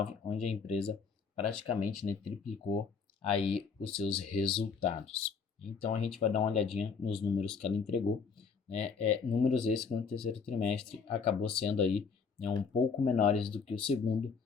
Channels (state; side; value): quieter; right; 5.6 dB